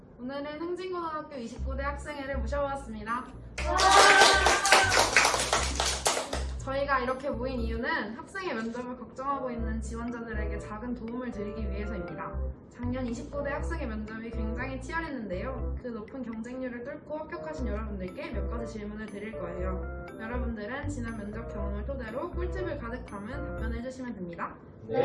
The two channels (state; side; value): identical; both; correlation 1.00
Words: 오늘은 흥진고등학교 29대 학생회를 모셔보았습니다. 저희가 이렇게 모인 이유는 학생의 면접을 걱정하고 있는 지원자들에게 작은 도움을 드리기 위해서입니다. 작년 29대 학생의 면접이 굉장히 치열했는데요. 그 높은 경쟁률을 뚫고 합격하신 여러분들께 몇 가지 질문을 드릴 거예요. 여러분들은 지난 면접 경험을 토대로 꿀팁을 가득 담은 답변을 해주시면 됩니다.